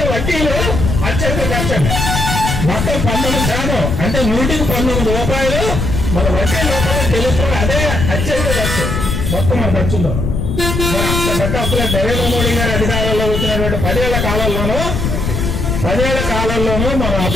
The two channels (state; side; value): noise; left; rumble, 1 dB below the sound